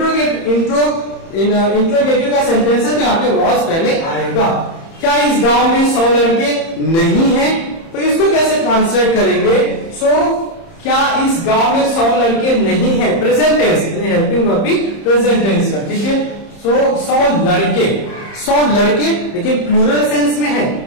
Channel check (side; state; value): right; late; 30 ms